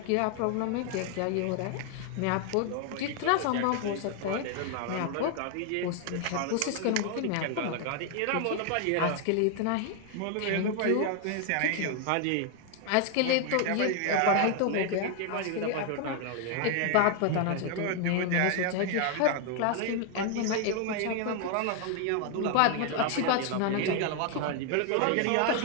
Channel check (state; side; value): different; both; correlation 0.00